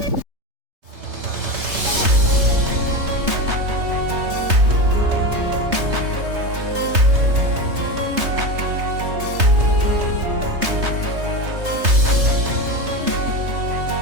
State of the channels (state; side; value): late; left; 3.3 ms